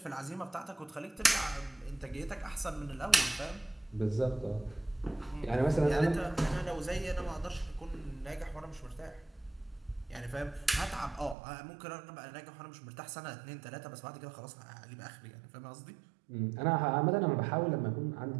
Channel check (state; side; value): drops out; left; at 11.4 s